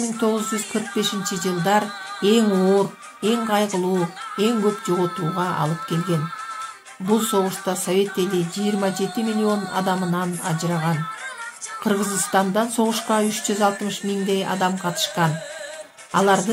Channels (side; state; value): both; identical; correlation 1.00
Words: жылдар эң оор, эң кайгылуу, эң көп жоготууга алып келген. Бул согушта Совет эли 27 миллион адамынан ажыраган. Кыргызстандан согушка 360 миңдей адам катышкан.